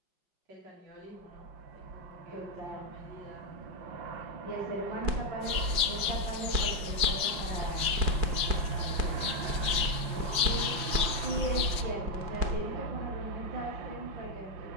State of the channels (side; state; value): left; late; 4.9 ms